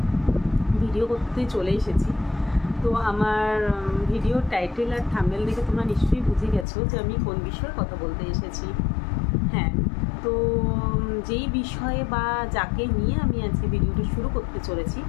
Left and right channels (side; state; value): right; drops out; at 6.7 s